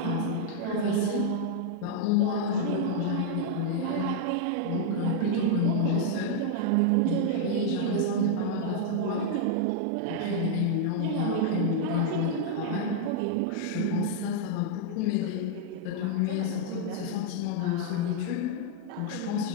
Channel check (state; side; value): different; both; correlation -0.01